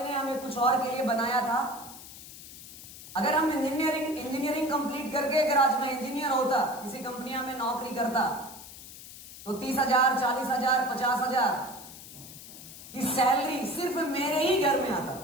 हमें कुछ और के लिए बनाया था। अगर हम इंजीनियरिंग कंप्लीट करके अगर आज मैं इंजीनियर होता, किसी कंपनियां में नौकरी करता, तो 30,000, 40,000, 50,000 की सैलरी सिर्फ मेरे ही घर में आता।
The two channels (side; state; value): left; noise; hiss, 15 dB below the sound